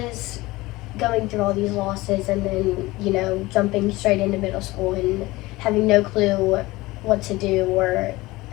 going through all these losses, and then jumping straight into middle school and having no clue what to do or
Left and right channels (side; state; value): right; quieter; 20.1 dB